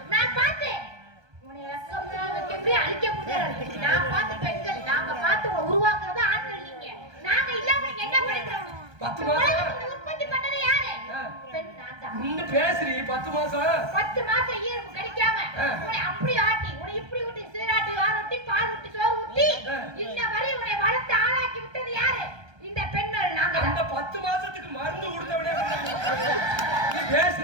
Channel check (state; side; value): late; left; 1.2 ms